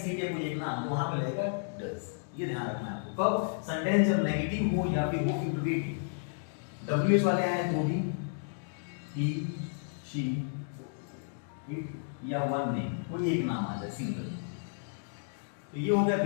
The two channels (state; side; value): silent; right; digital silence